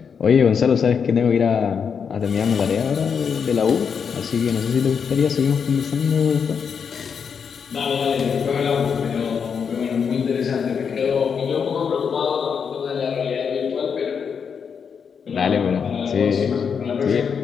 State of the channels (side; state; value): right; quieter; 6.6 dB